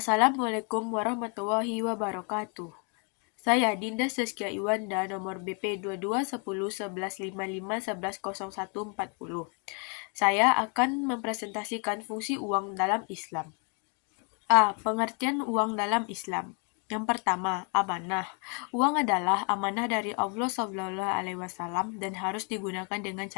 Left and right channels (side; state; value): right; quieter; 35.5 dB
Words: warahmatullahi wabarakatuh. Saya Dinda Saskia Iwanda, nomor BP 22101155110140. Saya akan mempresentasikan fungsi uang dalam Islam. A. Pengertian uang dalam Islam. Yang pertama, amanah. Uang adalah amanah dari Allah SAW dan harus digunakan dengan